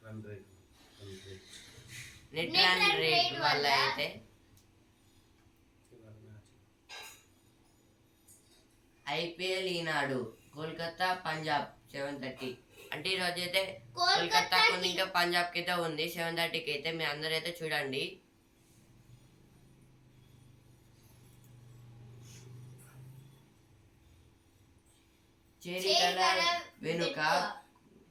నెట్ రన్ రేట్ వల్ల అయితే ఐపీఎల్ ఈనాడు కోల్కతా పంజాబ్ 7:30. అంటే ఈరోజు అయితే కోల్కతాకు ఇంకా పంజాబ్కి అయితే ఉంది 7:30కి అయితే. మీ అందరూ అయితే చూడండి. చేరికల వెనుక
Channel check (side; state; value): both; identical; correlation 1.00